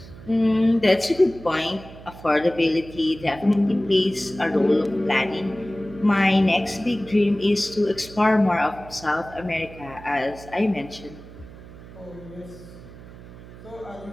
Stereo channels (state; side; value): noise; right; hum, 17 dB below the sound